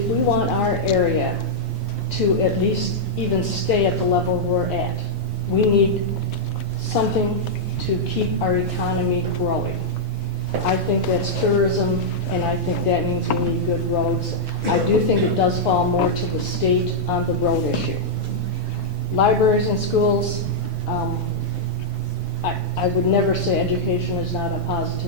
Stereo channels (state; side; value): normal; both; correlation -0.07